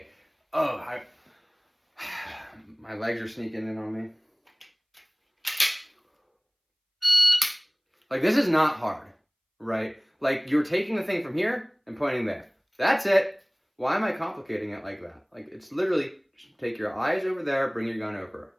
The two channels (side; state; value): both; identical; correlation 1.00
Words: Oh, my legs are sneaking in on me. Like, this is not hard, right? Like, you're taking the thing from here and pointing there. That's it. Why am I complicating it like that? Like, it's literally just take your eyes over there, bring your gun over.